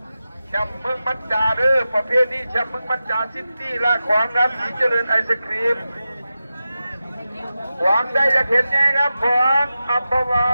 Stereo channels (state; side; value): inverted; both; correlation -0.93